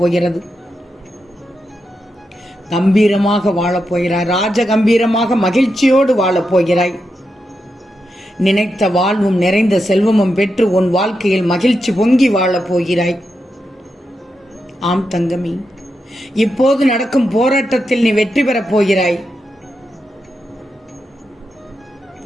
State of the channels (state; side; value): normal; both; correlation 0.86